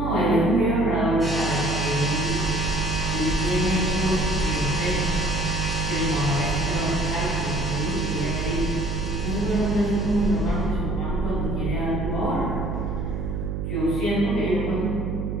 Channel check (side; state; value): right; noise; hum, 3 dB below the sound